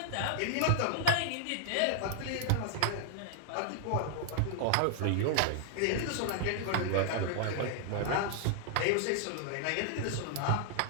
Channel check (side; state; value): both; different; correlation -0.01